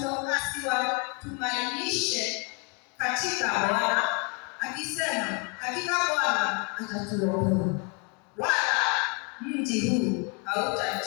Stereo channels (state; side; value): quieter; right; 33.3 dB